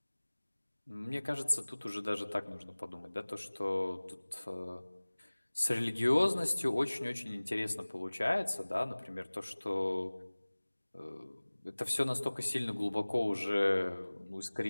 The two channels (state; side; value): inverted; both; correlation -1.00